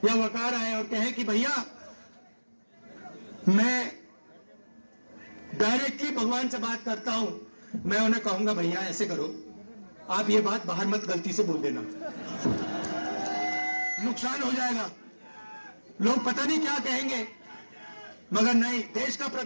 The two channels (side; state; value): both; inverted; correlation -1.00